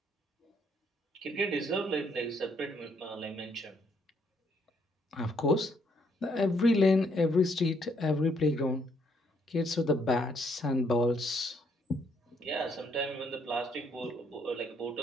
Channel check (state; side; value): normal; both; correlation 0.70